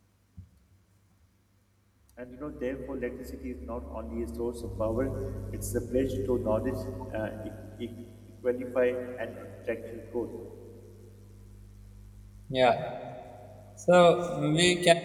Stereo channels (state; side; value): identical; both; correlation 1.00